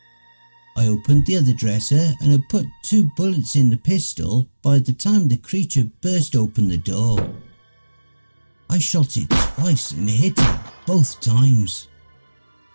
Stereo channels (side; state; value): both; inverted; correlation -1.00